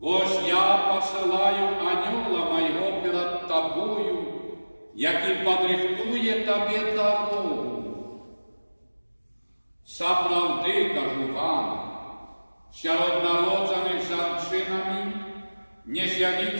«Ось я посылаю анёла моего перед тобою, який подрихтує тобі дорогу». Справді, кажу вам, серед народжених жінками не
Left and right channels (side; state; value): both; inverted; correlation -1.00